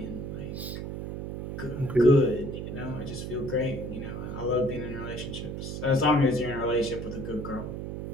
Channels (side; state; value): right; noise; hum, 6 dB below the sound